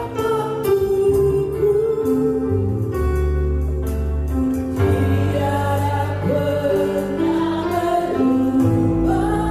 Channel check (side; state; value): both; identical; correlation 1.00